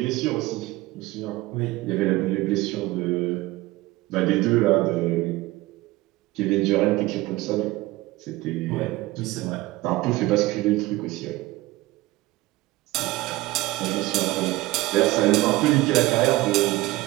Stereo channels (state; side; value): quieter; left; 19.2 dB